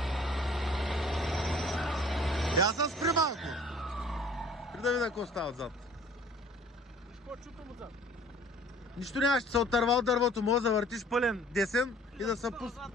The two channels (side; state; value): both; normal; correlation 0.52